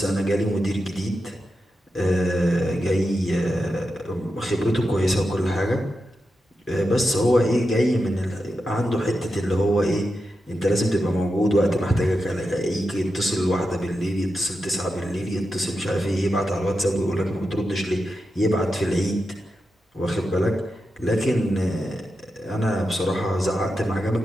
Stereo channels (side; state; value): both; normal; correlation 0.89